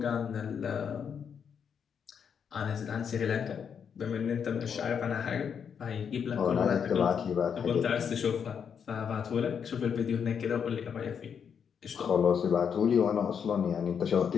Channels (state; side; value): quieter; right; 7.2 dB